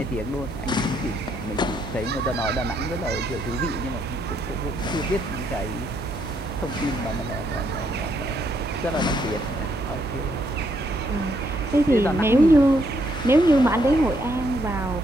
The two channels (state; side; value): noise; left; hum, 15 dB below the sound